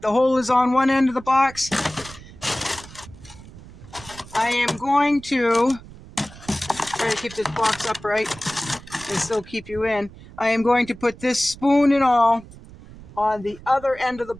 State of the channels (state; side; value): noise; right; rumble, 18 dB below the sound